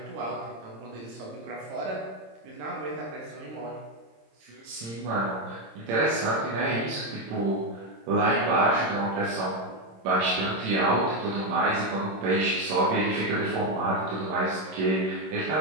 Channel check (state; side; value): late; left; 26 ms